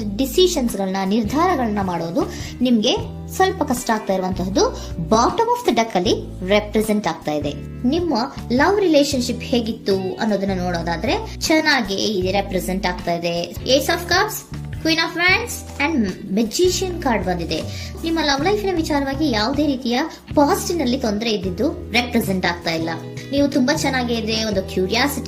ಡಿಸಿಷನ್ಸ್ ಗಳನ್ನ, ನಿರ್ಧಾರಗಳನ್ನ ಮಾಡೋದು ನಿಮ್ಗೆ ಸ್ವಲ್ಪ ಕಷ್ಟ ಆಗ್ತಾ ಇರುವಂತಹದ್ದು ಬಾಟಮ್ ಆಫ್ ದ ಡೆಕ್ ಅಲ್ಲಿ ರೆಪ್ರೆಸೆಂಟ್ ಆಗ್ತಾ ಇದೆ. ನಿಮ್ಮ ಲವ್ ರಿಲೇಶನ್ಶಿಪ್ ಹೇಗಿತ್ತು ಅನ್ನೋದನ್ನ ನೋಡೋದಾದ್ರೆ ಚೆನ್ನಾಗಿ ಇದು ರೆಪ್ರೆಸೆಂಟ್ ಆಗ್ತಾ ಇದೆ. Ace of cups, queen of wands and magician card ಬಂದಿದೆ. ನಿಮ್ಮ ಲವ್ ಲೈಫಿನ ವಿಚಾರವಾಗಿ ಯಾವುದೇ ರೀತಿಯ ಪಾಸಿಟಿವ್ ನಲ್ಲಿ ತೊಂದರೆ ಇದ್ದಿದ್ದು ರೆಪ್ರೆಸೆಂಟ್ ಆಗ್ತಾ ಇಲ್ಲ. ನೀವು ತುಂಬಾ ಚೆನ್ನಾಗಿದೆ, ಒಂದು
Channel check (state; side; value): identical; both; correlation 1.00